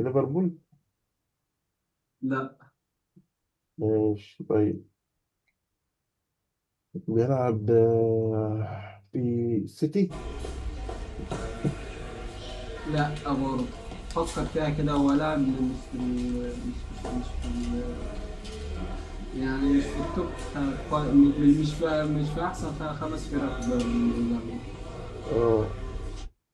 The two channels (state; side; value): identical; both; correlation 1.00